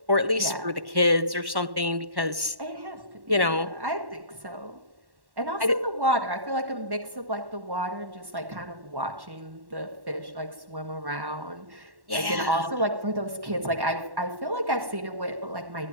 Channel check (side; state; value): left; late; 1.1 ms